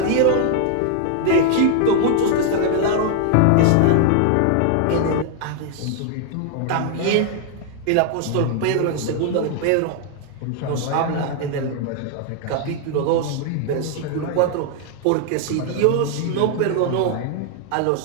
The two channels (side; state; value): both; different; correlation 0.00